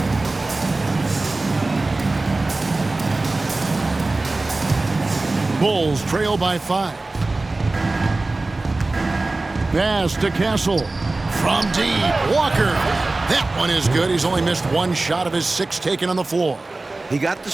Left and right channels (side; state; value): left; quieter; 3.2 dB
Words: Bulls trail by 5. Pass to Castle. From deep, Walker. That one is good. He's only missed 1 shot of his 6 taken on the floor. He got the